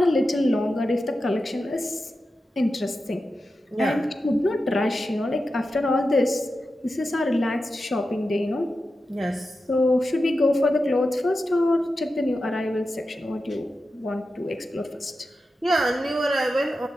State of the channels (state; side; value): normal; both; correlation 0.91